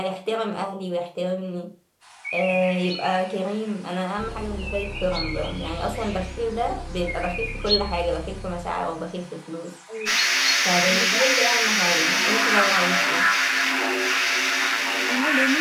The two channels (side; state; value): both; identical; correlation 1.00